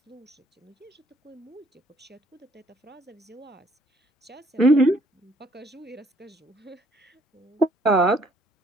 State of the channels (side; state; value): both; normal; correlation 0.63